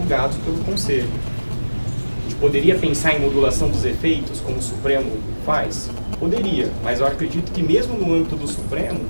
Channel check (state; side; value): inverted; both; correlation -1.00